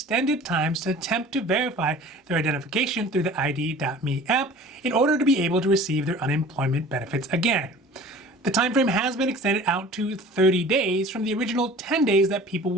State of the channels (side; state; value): both; normal; correlation 0.44